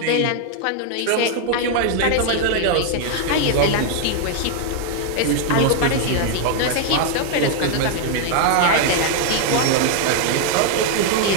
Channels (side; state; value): both; different; correlation 0.00